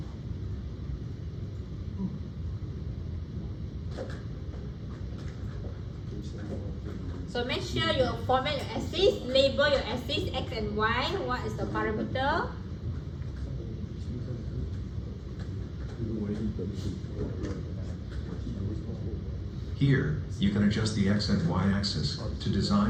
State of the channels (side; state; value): both; identical; correlation 1.00